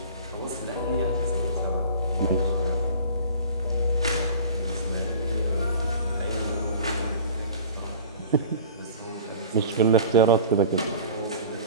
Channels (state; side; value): inverted; both; correlation -0.41